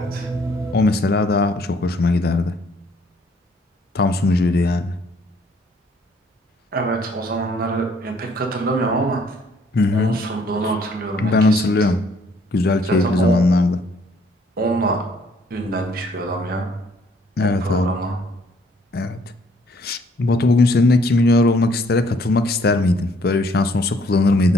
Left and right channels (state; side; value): normal; both; correlation 0.63